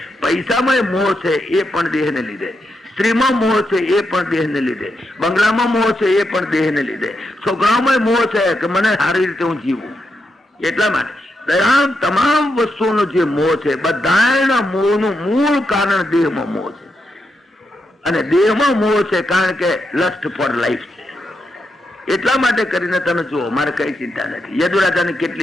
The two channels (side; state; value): both; normal; correlation 0.84